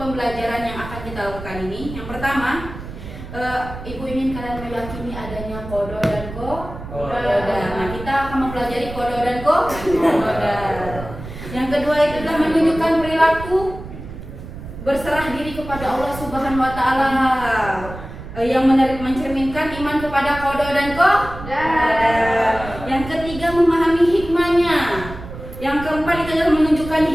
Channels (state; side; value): noise; right; rumble, 12 dB below the sound